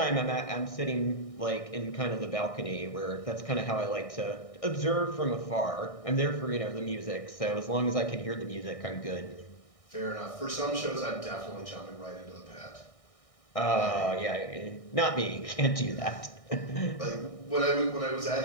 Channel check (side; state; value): right; late; 1.6 ms